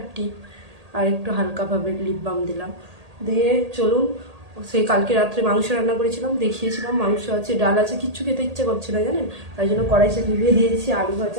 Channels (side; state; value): left; late; 1.8 ms